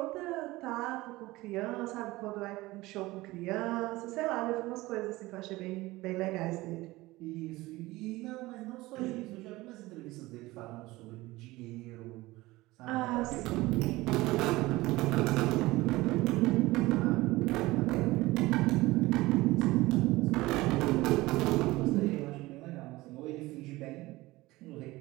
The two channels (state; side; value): quieter; left; 19.5 dB